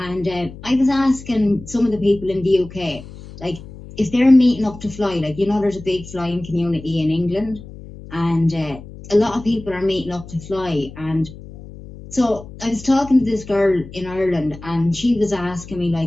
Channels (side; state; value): left; noise; hum, 16 dB below the sound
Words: I was asking some of the people in the UK, like, if they're meeting up to fly, like, you know, there's a big flying community in England. And a lot of people are meeting up to fly. And so I was talking to this girl in Ireland, and she was asking me,